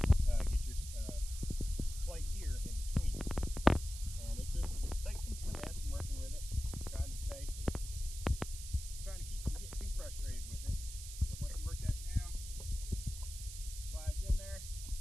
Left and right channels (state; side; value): noise; right; hiss, 11 dB below the sound